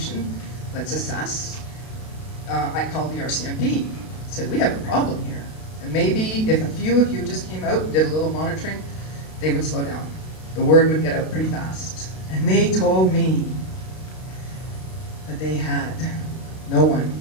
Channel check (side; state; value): right; late; 32 ms